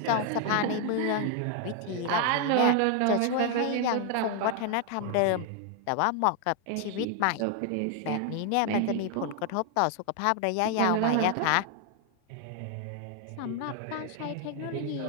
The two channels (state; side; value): different; both; correlation 0.00